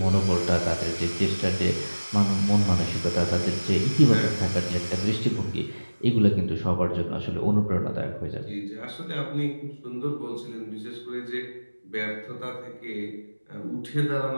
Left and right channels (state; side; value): inverted; both; correlation -1.00